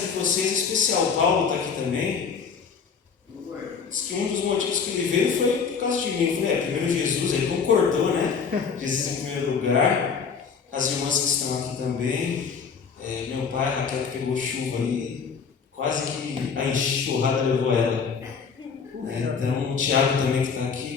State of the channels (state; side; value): quieter; right; 6.0 dB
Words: de vocês é especial. O Paulo está aqui também. Diz que um dos motivos que ele veio foi por causa de mim. Eu falei, primeiro Jesus, ele concordou, né? Jesus em primeiro lugar. As irmãs que estão aqui também. Meu pai, a Raquel, que pegou chuva aí, quase que a enxurrada levou ela. Então o Tiago também que está